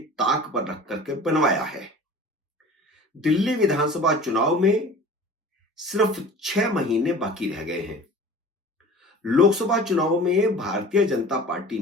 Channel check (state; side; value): normal; both; correlation 0.41